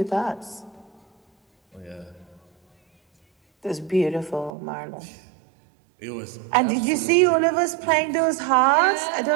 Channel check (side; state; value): left; drops out; at 4.5 s